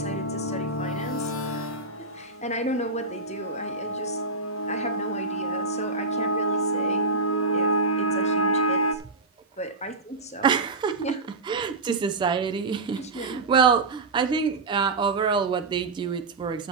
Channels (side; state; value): left; quieter; 3.4 dB